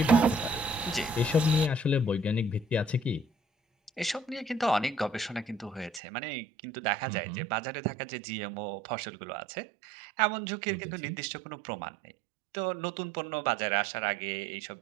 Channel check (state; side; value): drops out; left; at 6.0 s